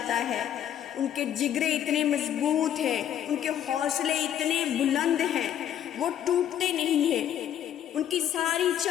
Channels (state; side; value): quieter; right; 10.3 dB